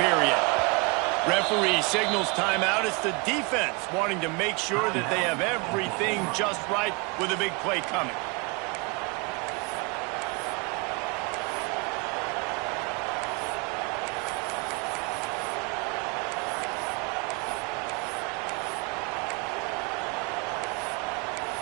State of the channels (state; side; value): quieter; left; 29.1 dB